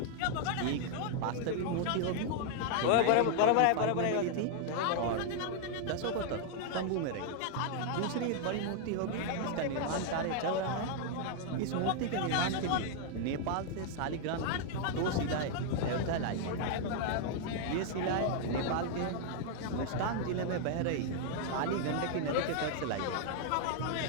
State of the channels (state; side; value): different; both; correlation 0.00